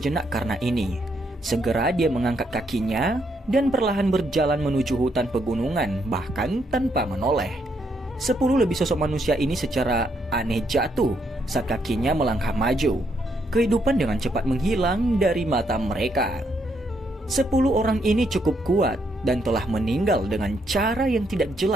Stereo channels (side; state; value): both; normal; correlation 0.75